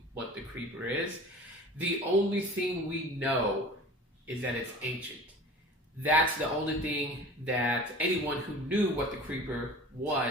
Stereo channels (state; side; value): normal; both; correlation 0.40